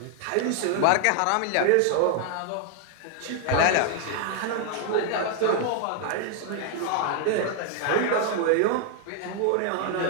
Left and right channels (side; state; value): both; different; correlation 0.00